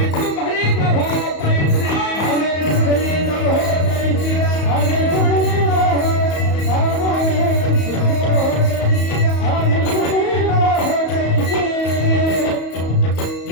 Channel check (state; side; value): late; right; 34 ms